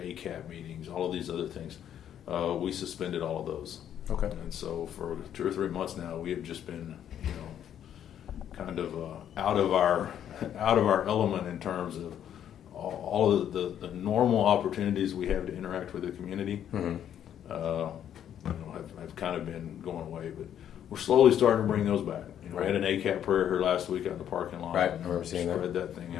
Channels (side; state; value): right; quieter; 9.9 dB